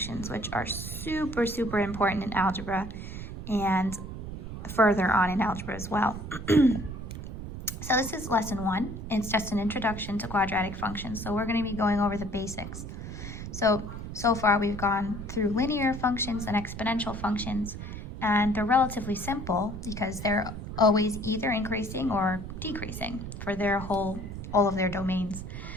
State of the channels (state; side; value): noise; right; rumble, 8 dB below the sound